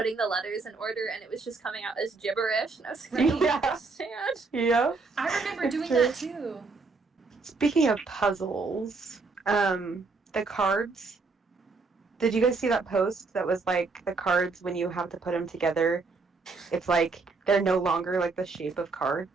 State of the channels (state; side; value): quieter; left; 4.1 dB